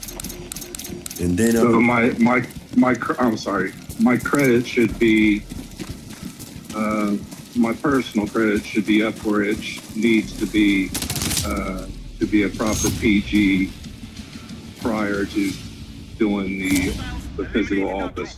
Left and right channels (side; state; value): both; identical; correlation 1.00